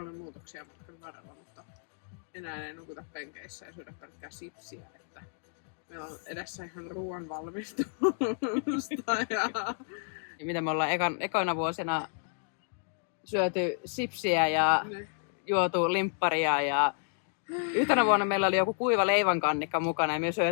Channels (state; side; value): silent; right; digital silence